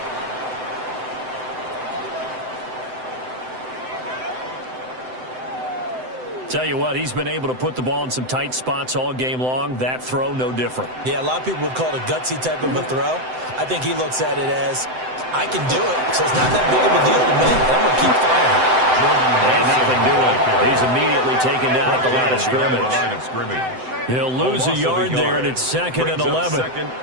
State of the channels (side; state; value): left; late; 7.8 ms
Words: Tell you what, he's been able to put the ball in some tight spots all game long. That throw, no different. Yeah, a lot of people would call it a gutsy type of a throw. I think he looks at it as, I can do it, so it's not that big of a deal to me. I'm going to keep firing. And nothing doing. He's immediately taken down at the line of scrimmage. He'll lose a yard there, and it's 2nd and 11.